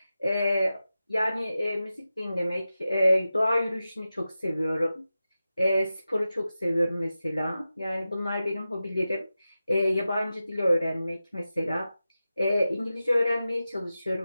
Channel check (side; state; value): both; inverted; correlation -0.93